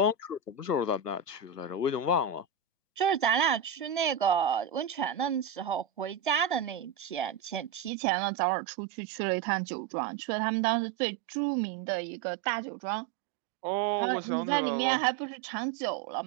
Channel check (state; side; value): drops out; left; at 7.9 s